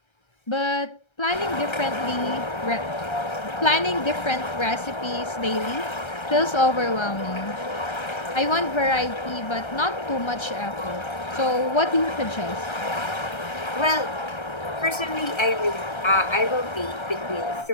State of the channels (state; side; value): late; right; 1.3 ms